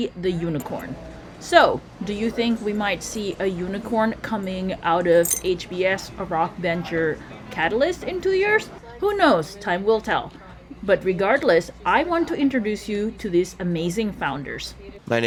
the unicorn. So, do you think we might see a unicorn coming out of HBS Rock Venture Catalyst in 2 years? Who knows? Time will tell. But regardless, I want to introduce you to these amazing founders. My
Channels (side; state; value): both; identical; correlation 1.00